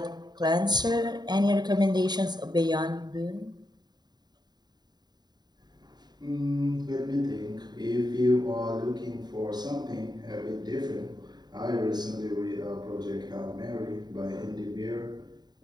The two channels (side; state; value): left; late; 0.20 ms